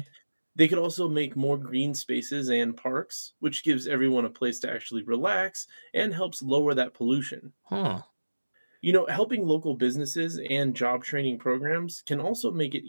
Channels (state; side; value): inverted; both; correlation -1.00